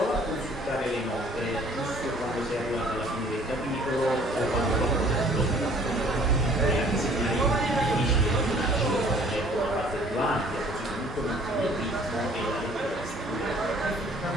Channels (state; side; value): normal; both; correlation 0.56